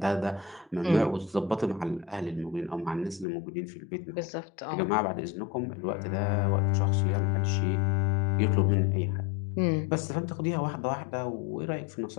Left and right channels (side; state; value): right; drops out; at 3.2 s